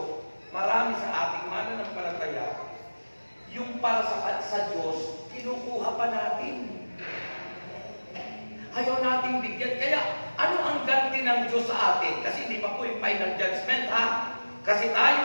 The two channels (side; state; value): both; inverted; correlation -1.00